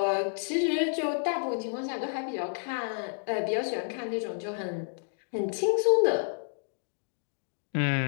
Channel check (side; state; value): right; silent; digital silence